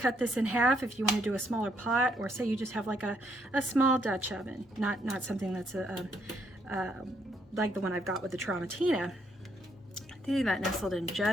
this in half if you want to do a smaller pot, or say you just have like a small Dutch oven, not something that's like the one I've got with the Tramontina. That nestled in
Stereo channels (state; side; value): normal; both; correlation 0.72